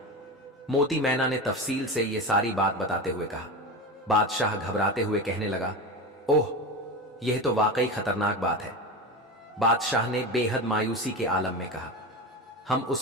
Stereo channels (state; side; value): normal; both; correlation 0.23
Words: मोती मैना ने तफसील से ये सारी बात बताते हुए कहा। बादशाह घबराते हुए कहने लगा, ओह, यह तो वाकई खतरनाक बात है। बादशाह ने बेहद मायूसी के आलम में कहा, हम